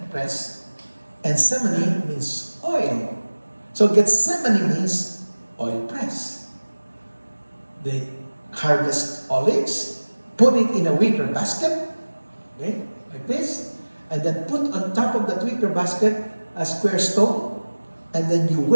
press. And semene means oil. So Gethsemane means oil press. They harvest olives, put it in a wicker basket, okay, like this, and then put on top of that wicker basket a square stone, and then you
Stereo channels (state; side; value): inverted; both; correlation -1.00